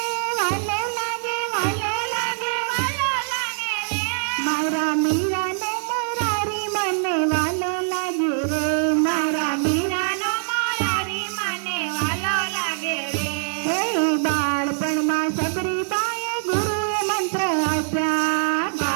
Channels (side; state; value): left; silent; digital silence